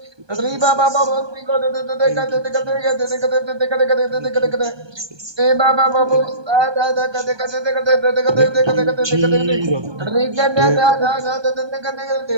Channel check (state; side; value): late; left; 1.2 ms